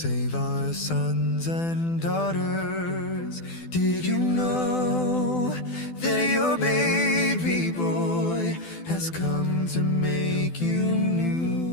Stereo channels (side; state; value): right; late; 12 ms